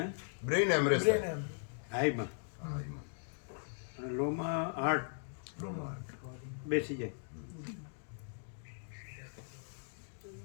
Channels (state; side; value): silent; right; digital silence